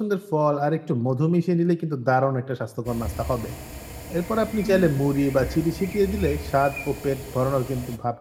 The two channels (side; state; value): both; identical; correlation 1.00